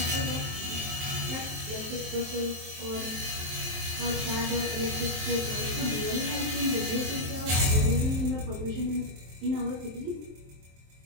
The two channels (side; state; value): left; late; 23 ms